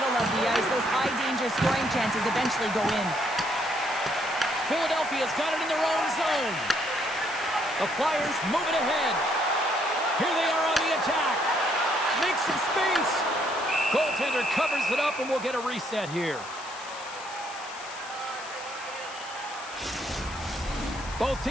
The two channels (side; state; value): left; noise; hiss, 16 dB below the sound